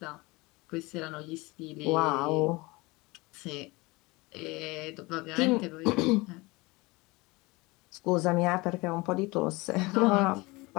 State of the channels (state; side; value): quieter; right; 23.6 dB